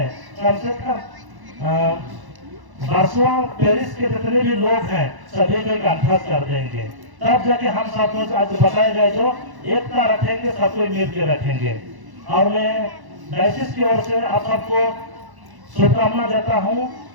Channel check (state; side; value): late; left; 1.1 ms